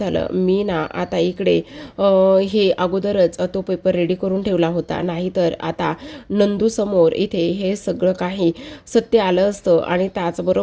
मी ना आता इकडे हे अगोदरच तो पेपर रेडी करून ठेवला होता, नाहीतर आता नंदूसमोर इथे हे सगळं काही सत्य आलं असतं आणि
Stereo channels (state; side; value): identical; both; correlation 1.00